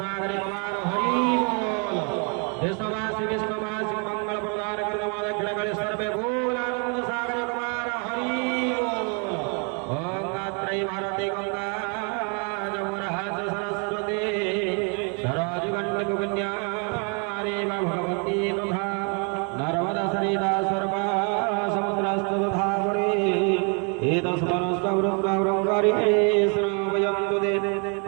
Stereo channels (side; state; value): left; quieter; 36.4 dB